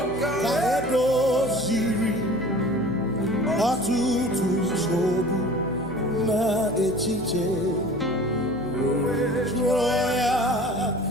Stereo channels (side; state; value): left; noise; hum, 14 dB below the sound